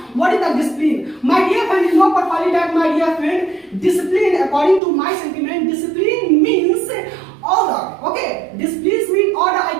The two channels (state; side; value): drops out; left; at 4.8 s